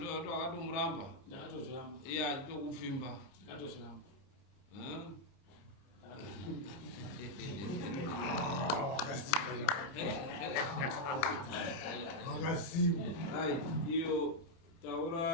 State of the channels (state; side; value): late; right; 30 ms